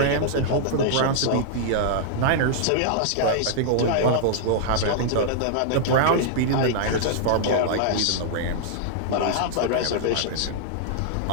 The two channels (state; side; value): different; both; correlation -0.01